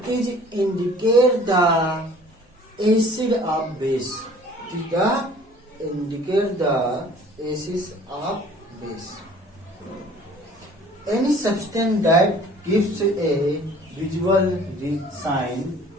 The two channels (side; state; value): both; normal; correlation 0.51